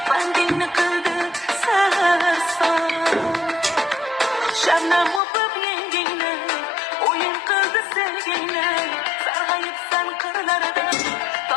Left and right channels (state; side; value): drops out; right; at 5.2 s